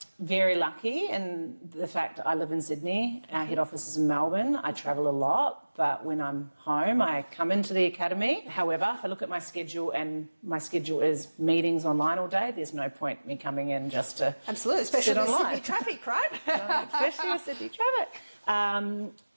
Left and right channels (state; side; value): inverted; both; correlation -1.00